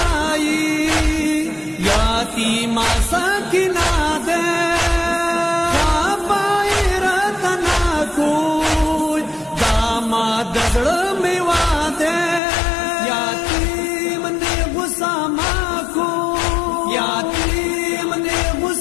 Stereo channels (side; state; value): right; drops out; at 12.4 s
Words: ماسا کنا دے پائی رتنا کوئی داماد دزڑ میوا دے یاتیم نے غصہ ماکو یاتیم نے